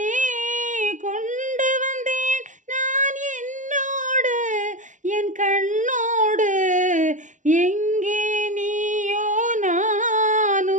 கொண்டு வந்தேன் நான் என்னோடு என் கண்ணோடு. எங்கே நீயோ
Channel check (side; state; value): left; late; 0.36 ms